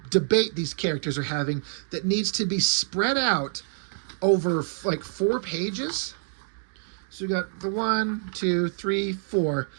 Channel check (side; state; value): left; silent; digital silence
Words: debate these characters are having that needs to be spread out over like 4 pages. So we got the 1, 2, 3, 4.